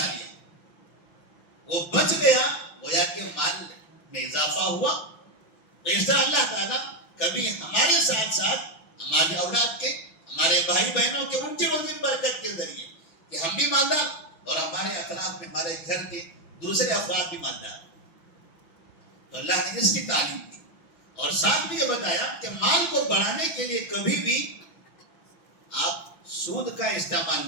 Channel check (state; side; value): late; right; 6.0 ms